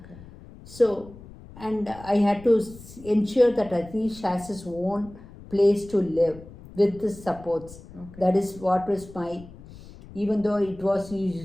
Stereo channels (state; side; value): noise; left; rumble, 18 dB below the sound